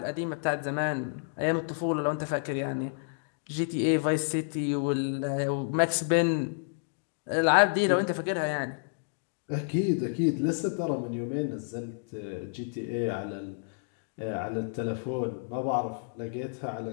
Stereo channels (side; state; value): right; silent; digital silence